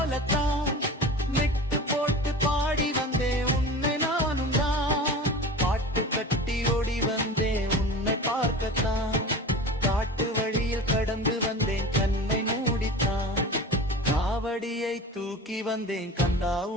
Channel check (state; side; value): normal; both; correlation 0.34